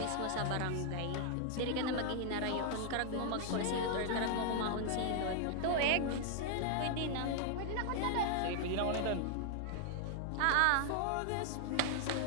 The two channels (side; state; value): both; different; correlation 0.00